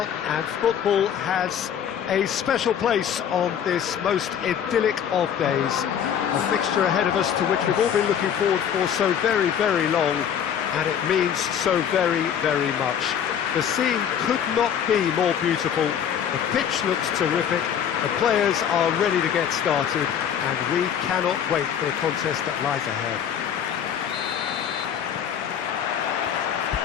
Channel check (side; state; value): right; quieter; 8.7 dB